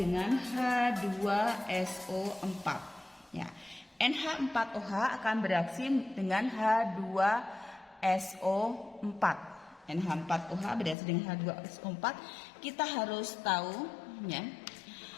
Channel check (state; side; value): drops out; right; at 11.0 s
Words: H2SO4 ya. NH4OH akan bereaksi dengan H2SO4. NH4OH bereaksi dengan H2SO4. Kita harus tahu ya.